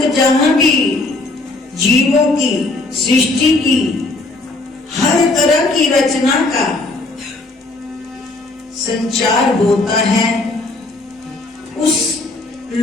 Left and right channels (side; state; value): right; quieter; 3.1 dB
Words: जहां भी जीवों की सृष्टि की हर तरह की रचना का संचार होता है, उस